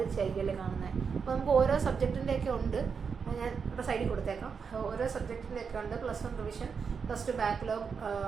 കാണുന്നത്. അപ്പോൾ നമുക്ക് ഓരോ സബ്ജക്റ്റിൻ്റെയൊക്കെ ഉണ്ട്, ഞാൻ ഇവിടെ സൈഡിൽ കൊടുത്തേക്കാം. ഓരോ സബ്ജക്റ്റിൻ്റെയൊക്കെ ഉണ്ട്. +1 റിവിഷൻ, +2 ബാക്ക്ലോഗ്,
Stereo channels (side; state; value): left; quieter; 6.0 dB